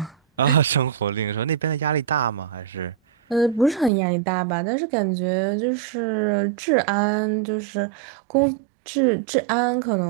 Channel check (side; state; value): left; drops out; at 3.9 s